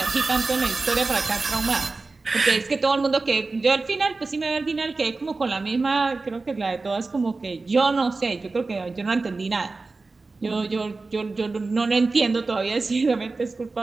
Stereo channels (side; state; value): left; quieter; 3.7 dB